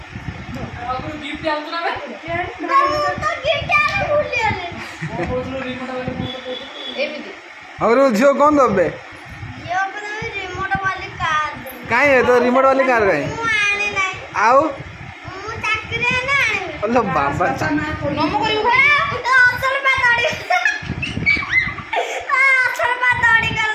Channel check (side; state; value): both; identical; correlation 1.00